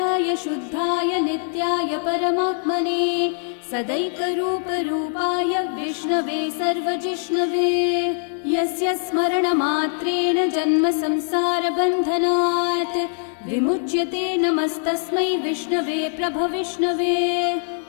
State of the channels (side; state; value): right; silent; digital silence